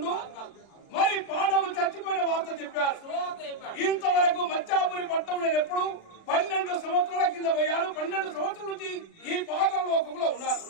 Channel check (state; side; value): late; right; 36 ms